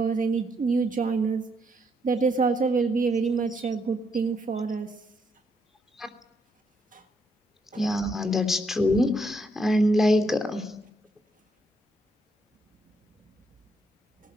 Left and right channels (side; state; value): both; normal; correlation 0.75